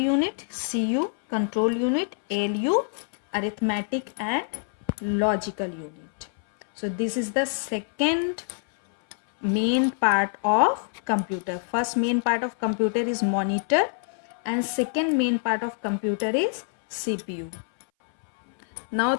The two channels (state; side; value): silent; right; 59 dB below the other